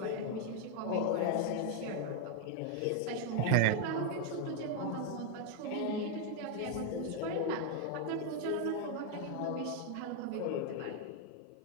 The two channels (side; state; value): both; different; correlation 0.00